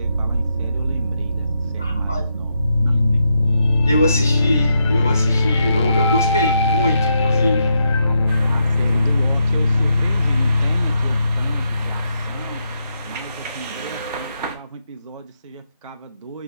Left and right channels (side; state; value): both; inverted; correlation -0.81